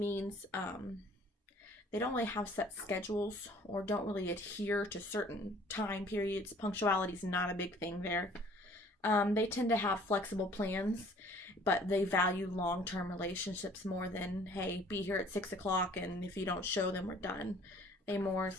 they don't really have set schedules or don't really adhere to certain time periods. Punctuality is not a big thing there. They tend to have flexible plans, but they value long-term relationships more than, hey, be here at 6 o'clock, and if you don't show them, we're done. They more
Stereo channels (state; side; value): normal; both; correlation 0.54